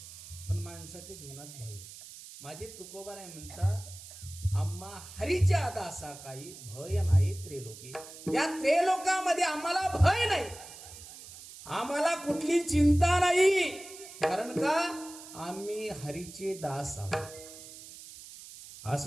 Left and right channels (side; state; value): right; noise; hiss, 15 dB below the sound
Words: पण माणसाच्या जीवनात भय. माझे तुकोबाराय म्हणतात आम्हा हरीच्या आदा असा काही भय नाही त्रेलोकी. या त्रेलोकामध्ये आम्हाला भय नाही, आम्हाला कुठली चिंता नाही. कारण का आम्ही हरीचे दास आहोत.